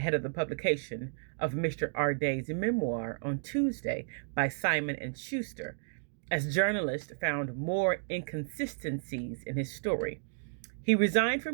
of the publication of Mr. Arday's memoir on Tuesday by Simon & Schuster, as journalists found more inconsistencies in his story. He resigned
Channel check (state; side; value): silent; left; digital silence